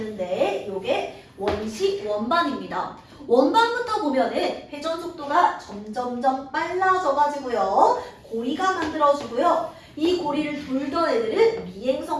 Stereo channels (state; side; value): identical; both; correlation 1.00